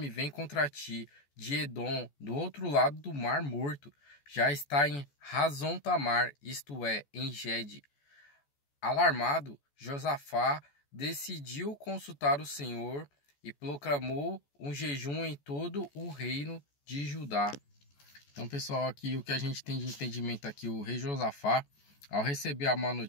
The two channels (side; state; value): right; late; 14 ms